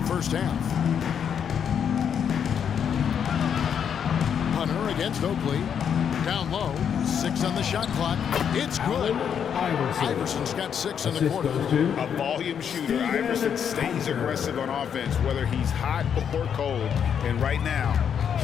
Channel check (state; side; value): quieter; right; 8.0 dB